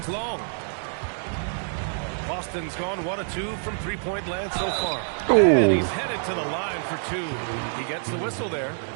long. Boston's gone 1 of 2 from three-point land so far. Ooh. And he's headed to the line for 2. He gets the whistle there.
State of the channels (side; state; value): left; silent; 61 dB below the other